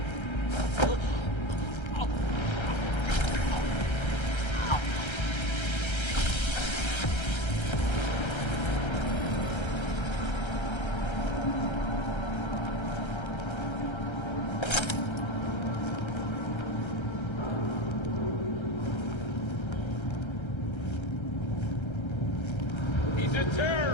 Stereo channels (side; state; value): right; late; 1.3 ms